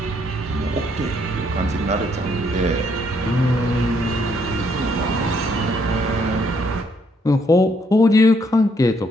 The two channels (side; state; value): both; normal; correlation 0.70